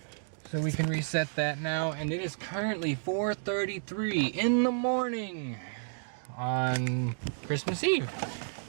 So we can reset that now, and it is currently 4:33 in the morning on Christmas Eve.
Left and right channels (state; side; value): silent; left; digital silence